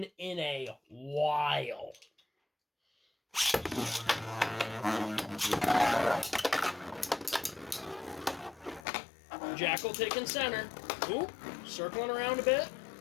in a while. Jackal taking center. Ooh, circling around a bit.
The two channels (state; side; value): drops out; right; at 8.8 s